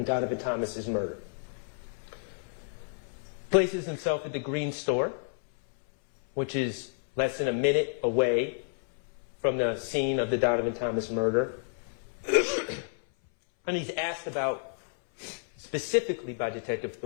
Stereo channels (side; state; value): right; silent; 58 dB below the other